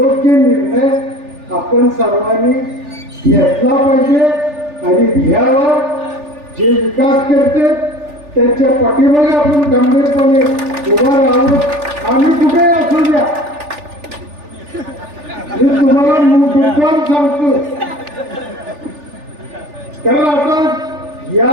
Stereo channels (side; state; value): left; late; 3.4 ms